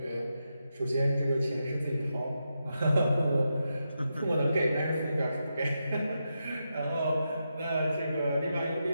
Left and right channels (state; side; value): inverted; both; correlation -0.86